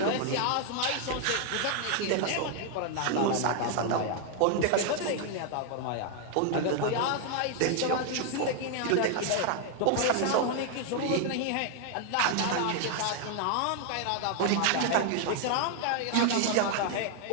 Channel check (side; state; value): both; different; correlation 0.00